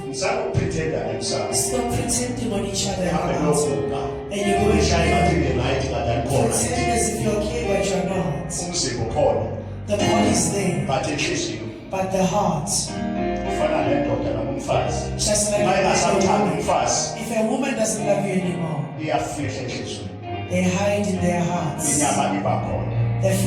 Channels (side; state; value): both; identical; correlation 1.00